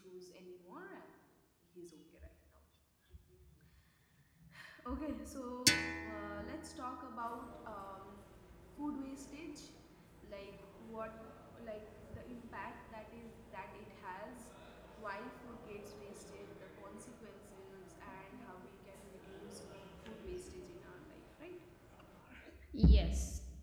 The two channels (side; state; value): both; identical; correlation 1.00